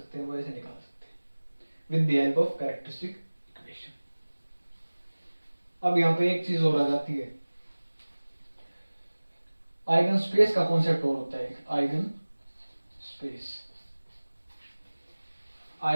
हैं? वो ऐसे निकाल सकते हैं with the help of characteristic equation. अब यहाँ पे एक चीज और आ जाती है, आइगन स्पेस का कॉन्सेप्ट और होता है एक आइगन स्पेस।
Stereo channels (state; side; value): inverted; both; correlation -1.00